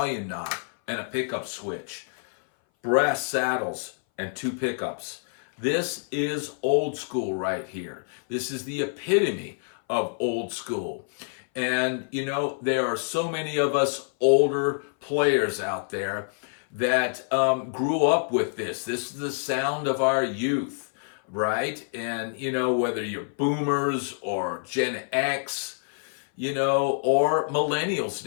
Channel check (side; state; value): right; silent; 58 dB below the other